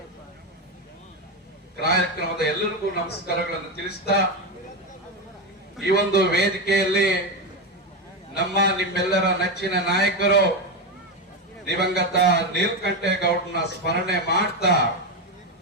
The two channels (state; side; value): normal; both; correlation 0.12